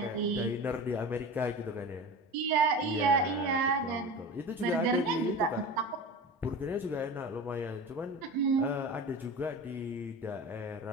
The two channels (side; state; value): both; normal; correlation 0.31